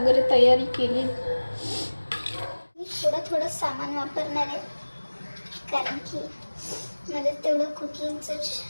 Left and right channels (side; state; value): both; inverted; correlation -1.00